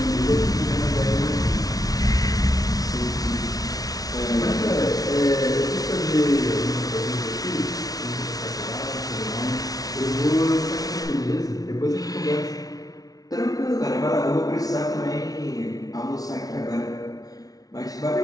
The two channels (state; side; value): late; right; 0.18 ms